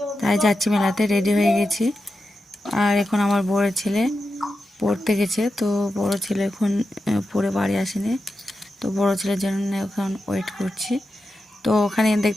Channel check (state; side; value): normal; both; correlation 0.90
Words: তাই যাচ্ছি মেলাতে। রেডি হয়ে গেছি। আর এখন আমার বড় ছেলে পড়তে গেছে, তো বড় ছেলে এখন পড়ে বাড়ি আসেনি, তো বড় ছেলের জন্য এখন ওয়েট করছি। তো ওখানে